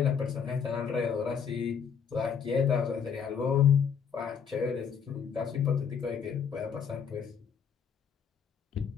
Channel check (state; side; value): quieter; right; 7.0 dB